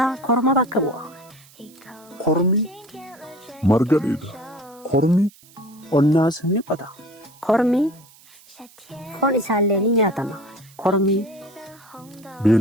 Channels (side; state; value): right; noise; hiss, 26 dB below the sound